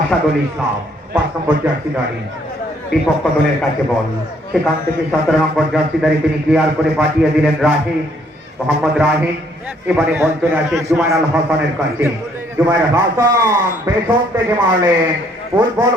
ইসলাম। 5 নম্বর জার্সিধারী বিপক্ষ দলের কাছে বল, সেখান থেকে 17 নম্বর জার্সিধারী তিনি ক্লিয়ার করে পাঠিয়ে দিলেন রাহিম, মোহাম্মদ রাহিম। এবারে বল চলে আসে জুবাইর আল হাসানের কাছে। জুবাইর হাসান পেছন থেকে মারলেন, ফুটবল।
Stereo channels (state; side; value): normal; both; correlation 0.66